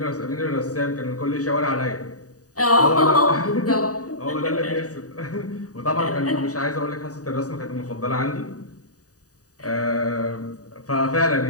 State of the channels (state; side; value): late; right; 0.66 ms